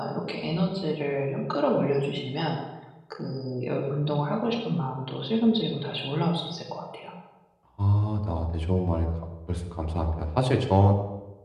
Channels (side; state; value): both; identical; correlation 1.00